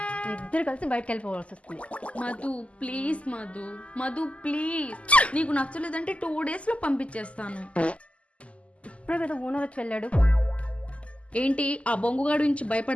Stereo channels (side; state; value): right; late; 0.062 ms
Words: ఇద్దరు కలిసి బయటకు వెళ్ళిపోవాల్సి వస్తుంది. మధు ప్లీజ్ మధు, మధు ప్లీజ్, నీకు నచ్చలేదంటే 2 డేస్లో పంపించేస్తాను. ఇప్పుడే కదా ఓనర్ వచ్చి వెళ్ళాడు. ఏంటి ఆ బొంగుగాడు నుంచి